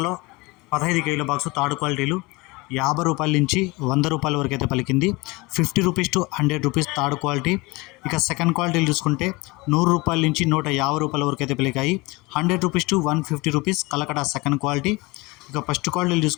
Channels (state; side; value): quieter; right; 24.0 dB